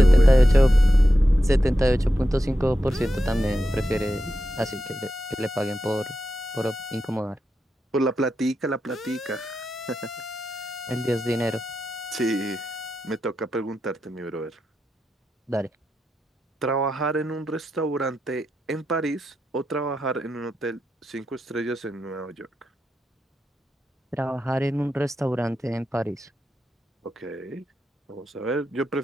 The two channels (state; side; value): normal; both; correlation 0.88